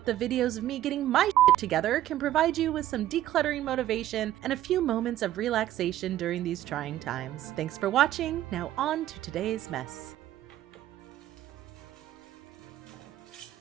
the videos of me getting my shit together can provide you with some decluttering motivation and a few moments of relaxation during these trying times. Thanks for watching. Now on to today's mess.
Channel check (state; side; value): quieter; left; 13.2 dB